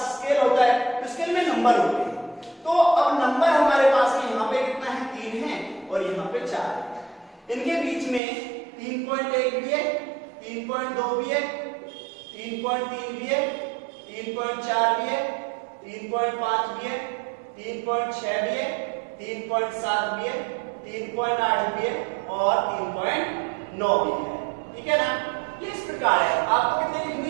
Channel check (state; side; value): drops out; left; at 8.2 s